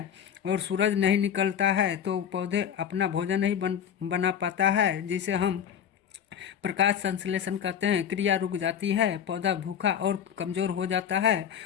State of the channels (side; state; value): right; quieter; 8.7 dB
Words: और सूरज नहीं निकलता है तो पौधे अपना भोजन नहीं बना पाता है, जिसे हम प्रकाश संश्लेषण कहते हैं। क्रिया रुक जाती है, पौधा भूखा और कमज़ोर हो जाता है